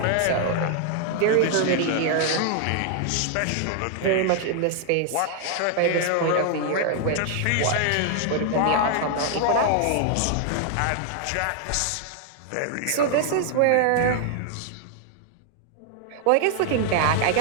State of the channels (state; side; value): different; both; correlation 0.00